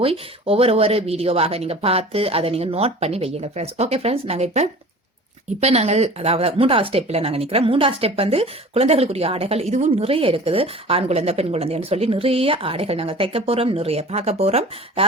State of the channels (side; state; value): both; normal; correlation 0.41